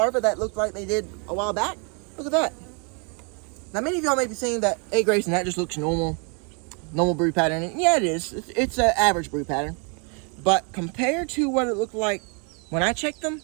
that look like they did a while back. Look at that. Now, many of y'all may be saying that egg race and that just looks normal brood pattern. And yeah, it is. It's an average brood pattern. But compared to what it looked like when I checked them,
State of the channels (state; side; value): quieter; left; 36.5 dB